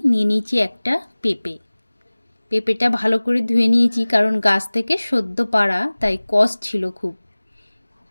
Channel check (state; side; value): inverted; both; correlation -1.00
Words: निये निয়েছি একটা পেঁপে। পেঁপেটা ভালো করে ধুয়ে নিয়েছি কারণ গাছ থেকে সদ্য পাড়া তাই কষ ছিল খুব।